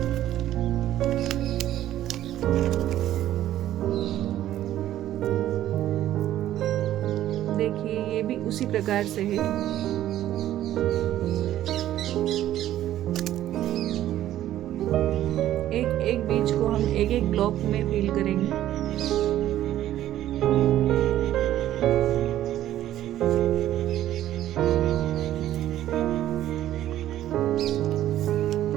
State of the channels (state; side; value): quieter; left; 12.8 dB